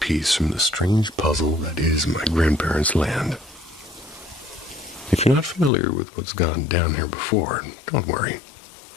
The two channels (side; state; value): right; drops out; at 5.7 s